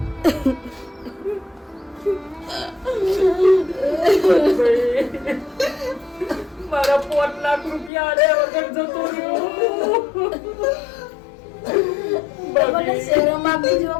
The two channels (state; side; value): drops out; right; at 7.9 s